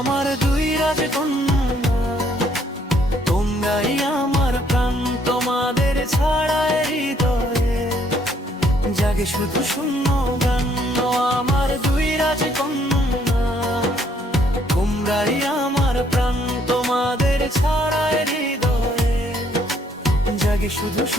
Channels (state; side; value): normal; both; correlation 0.67